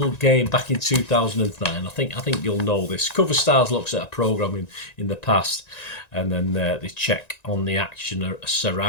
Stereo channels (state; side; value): late; right; 1.9 ms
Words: game back in 2009. I think you'll know this. Cover Stars looks at a programme in the past, and then they check on the action